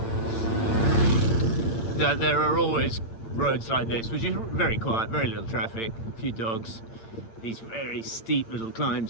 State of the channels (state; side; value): late; right; 8.8 ms